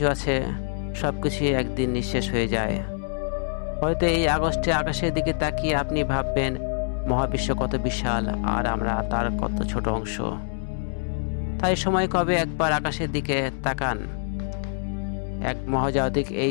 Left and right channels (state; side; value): silent; right; 62 dB below the other